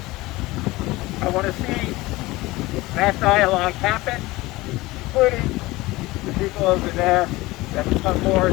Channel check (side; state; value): right; quieter; 20.1 dB